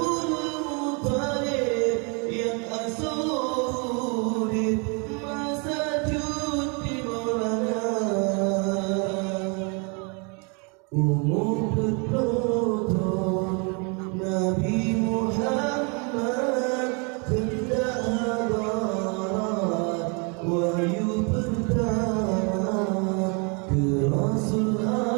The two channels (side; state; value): left; quieter; 34.2 dB